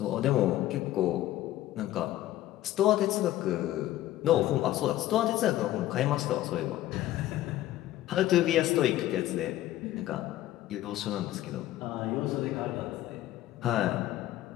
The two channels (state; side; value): quieter; right; 14.5 dB